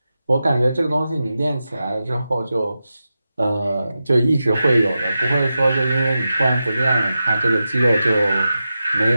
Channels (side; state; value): both; inverted; correlation -0.91